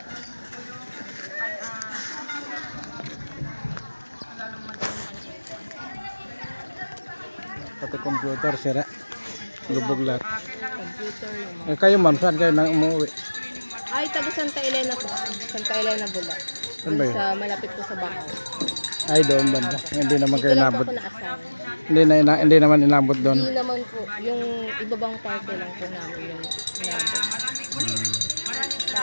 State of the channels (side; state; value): both; inverted; correlation -1.00